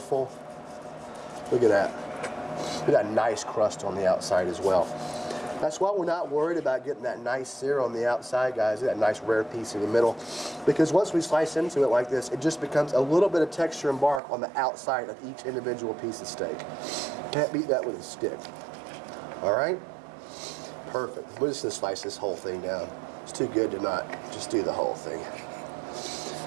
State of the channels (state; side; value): drops out; left; at 14.2 s